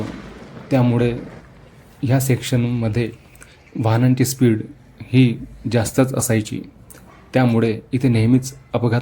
त्यामुळे ह्या सेक्शनमध्ये वाहनांची स्पीड ही जास्तच असायची, त्यामुळे इथे नेहमीच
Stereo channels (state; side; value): identical; both; correlation 1.00